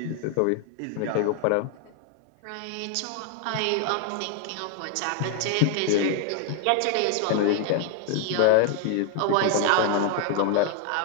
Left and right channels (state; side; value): different; both; correlation 0.00